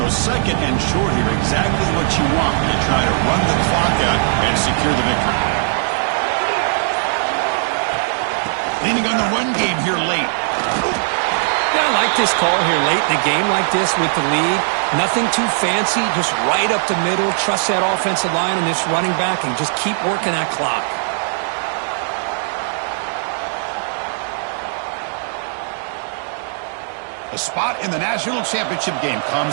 So 2nd and short here, exactly what you want when you try to run the clock out and secure the victory. Leaning on the run game here late. Yeah, I like this call here late in a game like this with the lead. Nothing too fancy, just right up the middle. Trust that offensive line and this running back and just keep working that clock. A spot in the national championship game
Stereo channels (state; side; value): silent; left; 67 dB below the other